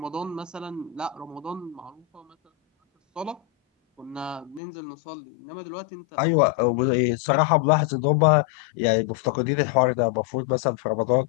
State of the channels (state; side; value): drops out; right; at 4.6 s